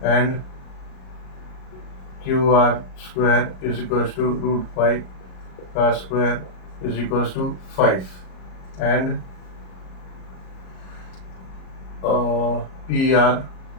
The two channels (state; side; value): late; right; 37 ms